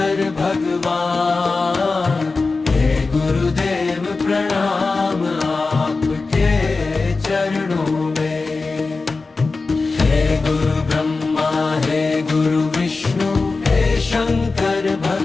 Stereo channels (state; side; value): quieter; right; 3.9 dB